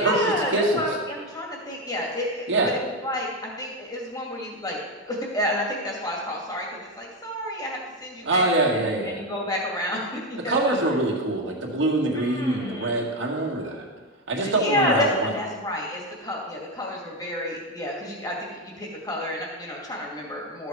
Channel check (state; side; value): normal; both; correlation 0.10